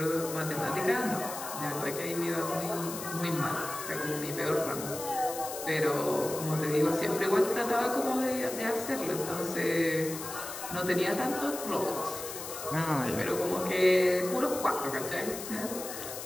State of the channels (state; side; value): noise; left; hiss, 9 dB below the sound